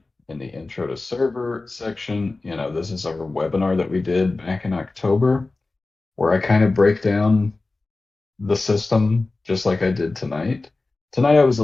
the intro to server section, this is our webinar that we did back in October, where I kind of break down the system just like I did tonight. Tonight I was a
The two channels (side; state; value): right; quieter; 3.4 dB